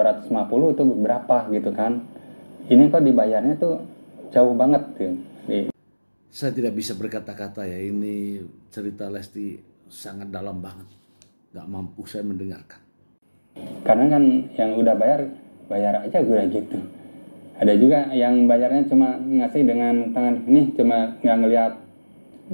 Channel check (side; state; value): both; inverted; correlation -1.00